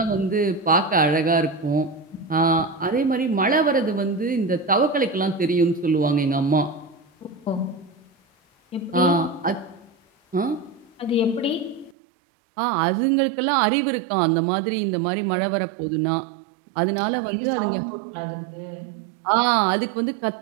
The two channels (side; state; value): left; drops out; at 12.0 s